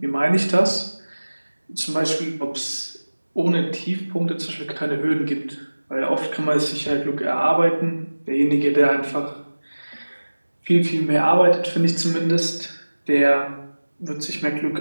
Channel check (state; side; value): inverted; both; correlation -1.00